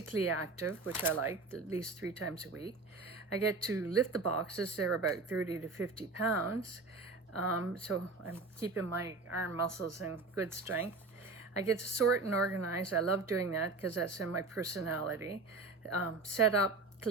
active, which I like, at least 3 times a week. I get to lift the boxes. They're about 30 to 50 pounds. So I'm keeping my arm muscles in good strength. I get to sort and organize. I love doing that because that's in my personality. Set up,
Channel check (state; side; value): quieter; left; 3.7 dB